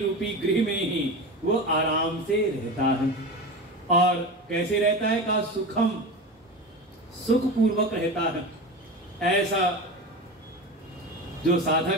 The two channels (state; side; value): normal; both; correlation 0.27